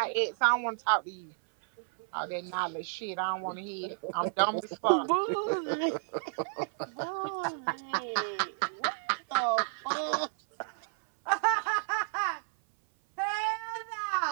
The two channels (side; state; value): left; silent; 57 dB below the other